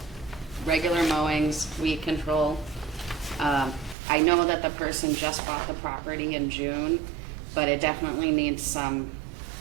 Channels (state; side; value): drops out; left; at 4.0 s